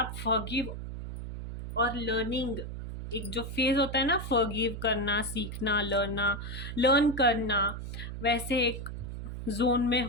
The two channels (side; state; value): right; noise; hum, 7 dB below the sound